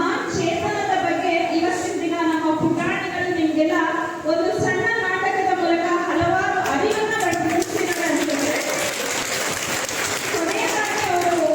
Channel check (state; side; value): identical; both; correlation 1.00